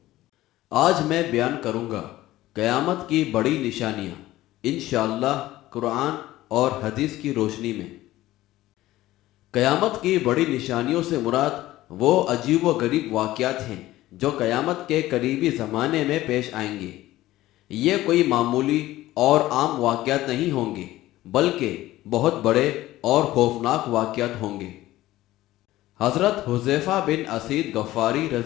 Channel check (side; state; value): right; quieter; 16.0 dB